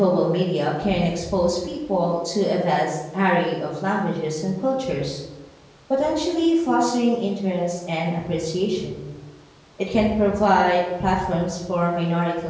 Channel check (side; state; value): both; identical; correlation 1.00